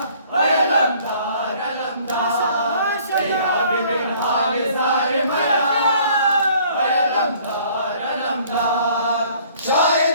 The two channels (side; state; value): both; inverted; correlation -0.56